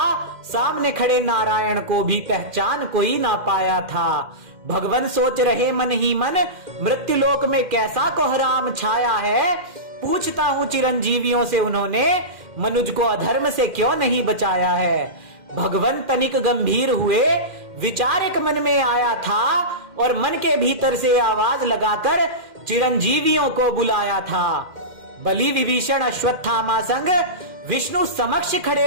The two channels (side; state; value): left; late; 2.4 ms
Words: सामने खड़े नारायण को भी पहचान कोई ना पाया था। भगवान सोच रहे मन ही मन, मृत्यु लोक में कैसा कोहराम छाया है। पूछता हूँ चिरंजीवियों से, उन्होंने मनुज को अधर्म से क्यों नहीं बचाया है। भगवान तनिक गंभीर हुए, विचार एक मन में आया था और मन के भीतर से आवाज लगाकर चिरंजीवियों को बुलाया था। बलि विभीषण अश्वत्थामा संग विष्णु समक्ष